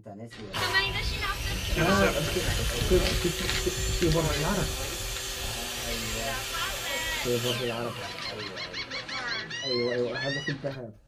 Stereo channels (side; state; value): both; identical; correlation 1.00